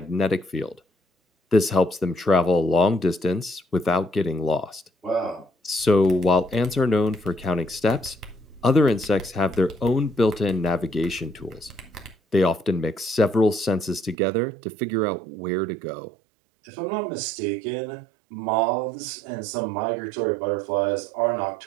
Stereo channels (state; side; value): drops out; left; at 14.2 s